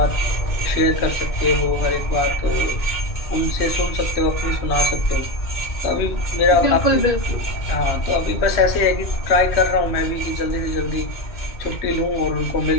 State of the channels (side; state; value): right; late; 3.1 ms